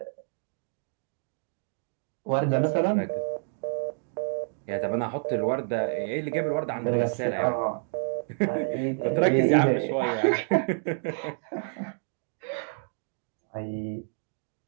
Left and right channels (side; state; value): left; silent; digital silence